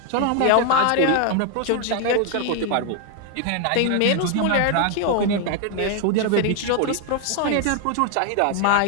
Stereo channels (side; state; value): both; different; correlation 0.00